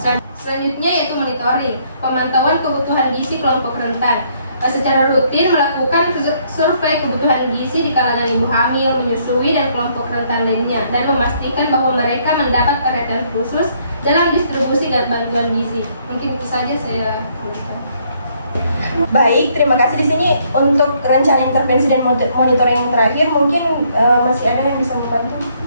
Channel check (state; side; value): inverted; both; correlation -0.68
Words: Selanjutnya yaitu monitoring, pemantauan kebutuhan gizi kelompok rentan. Secara rutin melakukan survei kebutuhan gizi di kalangan ibu hamil, menyusui, dan kelompok rentan lainnya, dan memastikan bahwa mereka mendapat perhatian khusus dalam distribusi dan bantuan gizi. Mungkin itu saja saya tuliskan. Baik, terima kasih. Di sini untuk rencana intervensi dan monitoring yang terakhir, mungkin masih ada yang bisa membantu?